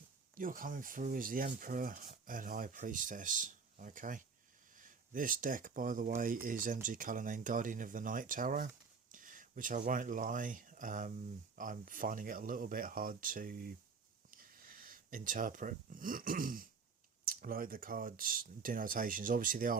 you're coming through as the Emperor and High Priestess, okay? This deck, by the way, is MG Cullinane Guardian of the Night Tarot, which I won't lie, I'm finding it a little bit hard to interpret. Like the cards' denotations, obviously they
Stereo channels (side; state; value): left; quieter; 5.2 dB